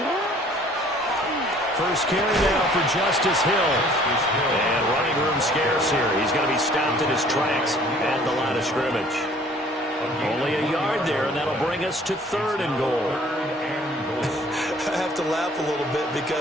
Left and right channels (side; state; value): both; normal; correlation 0.55